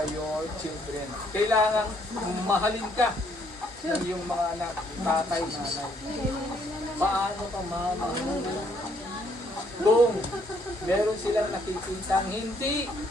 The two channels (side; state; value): both; normal; correlation 0.68